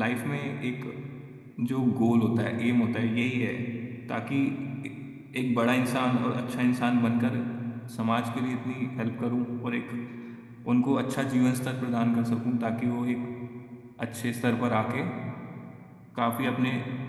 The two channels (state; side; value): identical; both; correlation 1.00